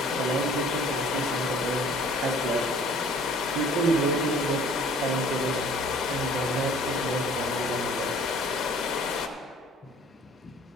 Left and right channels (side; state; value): both; normal; correlation 0.52